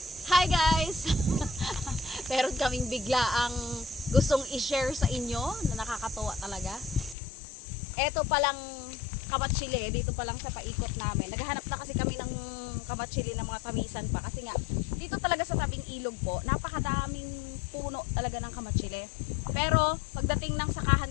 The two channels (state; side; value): drops out; right; at 7.2 s